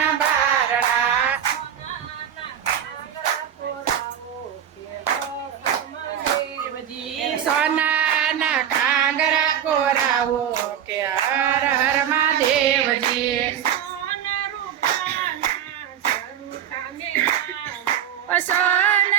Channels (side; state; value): left; quieter; 9.6 dB